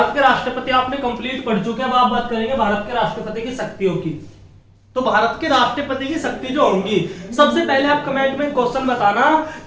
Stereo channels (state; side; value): identical; both; correlation 1.00